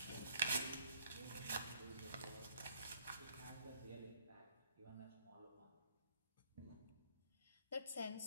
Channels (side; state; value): both; inverted; correlation -0.62